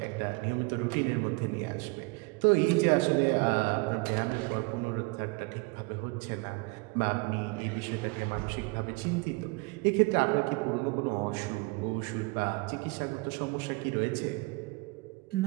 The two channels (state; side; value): quieter; left; 27.4 dB